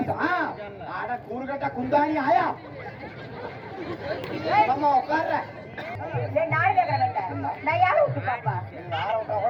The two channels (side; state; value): both; identical; correlation 1.00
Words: கூறுகட்ட குந்தாணி ஆயா உட்கார்ற நாடு கேட்கறேன் நான் யாரை விட்டு பாப்பா